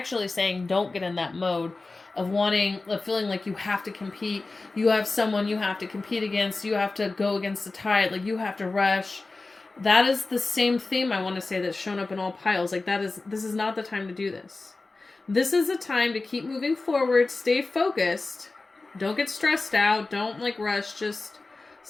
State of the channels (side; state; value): right; quieter; 3.5 dB